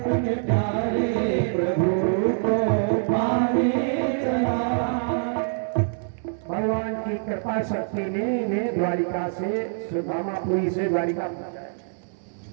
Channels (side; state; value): left; silent; digital silence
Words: प्यारे प्रभु को पाने चला। भगवान की कृपा शक्ति ने इन्हें द्वारिका से सुदामापुरी से द्वारिका पहुंचाया।